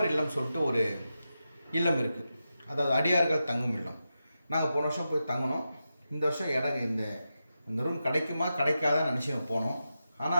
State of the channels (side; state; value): both; inverted; correlation -0.90